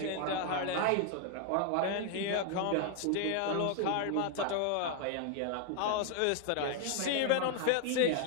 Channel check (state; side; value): different; both; correlation 0.00